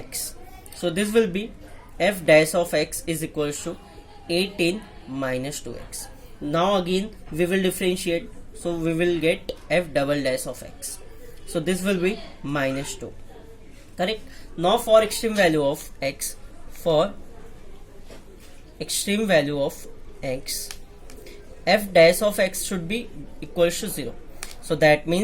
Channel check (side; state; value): both; identical; correlation 1.00